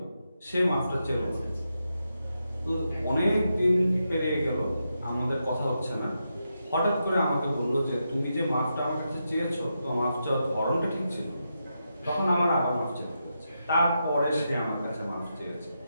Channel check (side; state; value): both; inverted; correlation -0.85